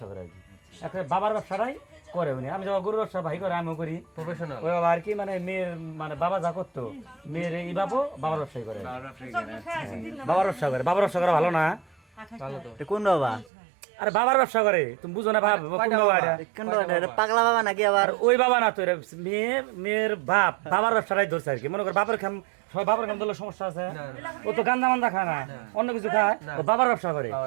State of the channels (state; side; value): drops out; left; at 13.5 s